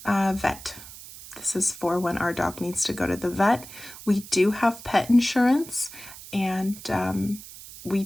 vet. This is for when our dog needs to go to the vet. We do have pet insurance, and we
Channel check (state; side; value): noise; right; hiss, 16 dB below the sound